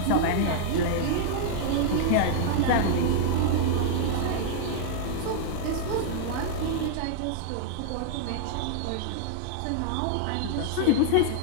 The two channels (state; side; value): different; both; correlation -0.01